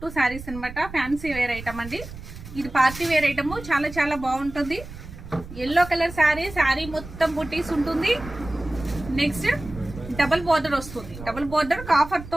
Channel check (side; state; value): right; noise; rumble, 13 dB below the sound